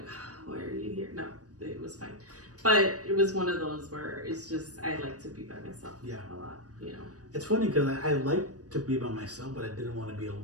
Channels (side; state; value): left; late; 0.67 ms